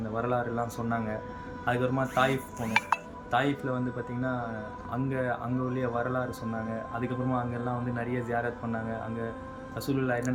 வரலாறுலாம் சொன்னாங்க. அதுக்கப்புறமா தாயிஃப் போனோம். தாயிஃபில் வந்து பார்த்திங்கன்னா அங்கே உள்ள வரலாறு சொன்னாங்க. அதுக்கப்புறமா அங்கெல்லாம் வந்து நிறைய ஜியாரத் பண்ணாங்க. அங்கே ரசூலுல்லாஹ்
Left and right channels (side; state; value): both; identical; correlation 1.00